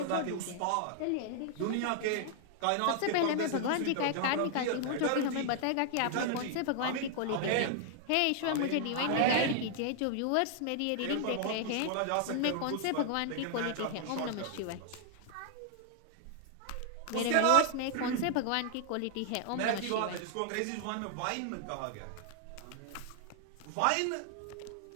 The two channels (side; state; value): both; different; correlation 0.00